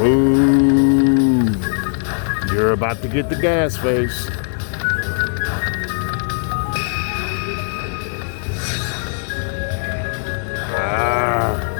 Ooh. You're about to get the gas face.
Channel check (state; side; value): silent; right; digital silence